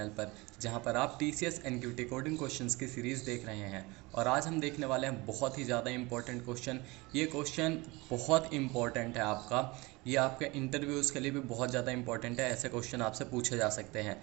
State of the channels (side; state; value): left; quieter; 23.6 dB